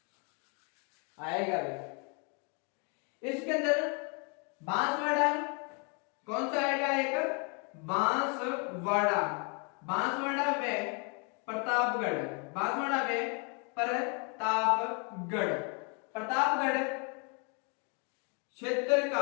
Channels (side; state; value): right; quieter; 36.1 dB